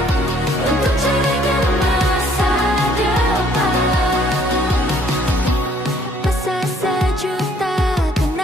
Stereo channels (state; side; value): normal; both; correlation 0.62